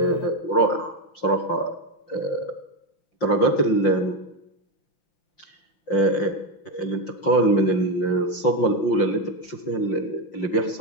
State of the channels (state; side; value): late; right; 5.7 ms